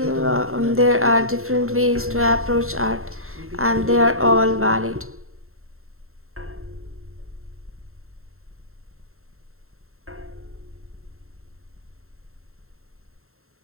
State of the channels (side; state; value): left; late; 0.62 ms